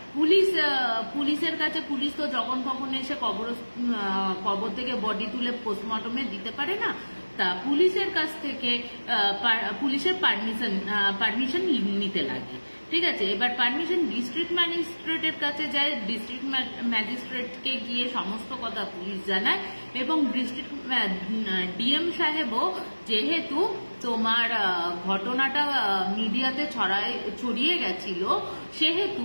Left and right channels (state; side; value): inverted; both; correlation -1.00